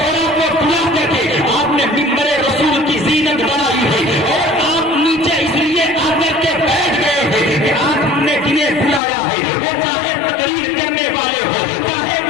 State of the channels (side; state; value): right; drops out; at 9.0 s